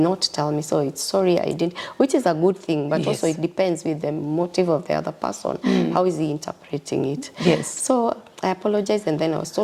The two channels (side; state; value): both; identical; correlation 1.00